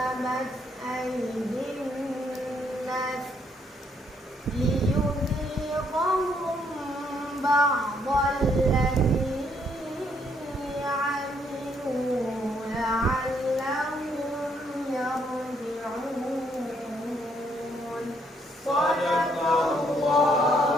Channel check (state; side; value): normal; both; correlation 0.71